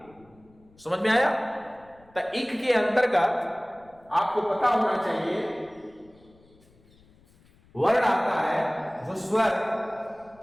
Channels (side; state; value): left; noise; rumble, 29 dB below the sound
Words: समझ में आया? तो इक के अंतर्गत आपको पता होना चाहिए वर्ण आता है जो स्वर,